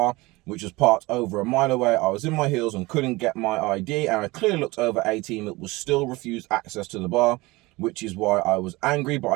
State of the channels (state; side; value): quieter; left; 22.0 dB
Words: which was parked over a mile away. I was in my heels and couldn't get my ID, and I clearly looked over 18 that was still refused access to the bar, which is why I was angry, but